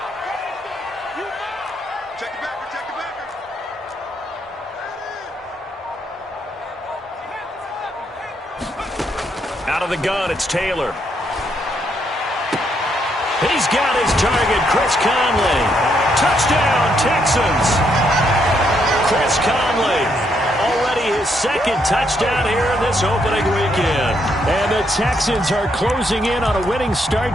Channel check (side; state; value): both; normal; correlation 0.75